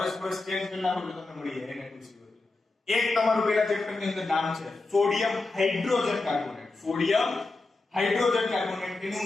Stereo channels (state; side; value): quieter; right; 3.4 dB